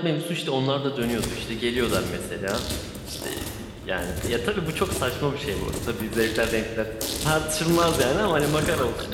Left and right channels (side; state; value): both; identical; correlation 1.00